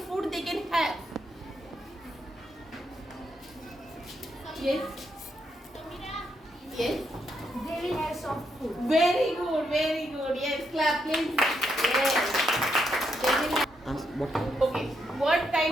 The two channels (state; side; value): normal; both; correlation 0.79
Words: food they can have? Yes. Yes. They will have soft food. Very good, very good. Yes, clap please. Yes. They will have. Okay, what